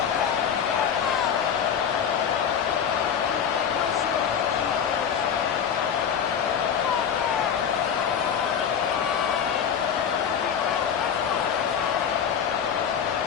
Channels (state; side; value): quieter; right; 7.9 dB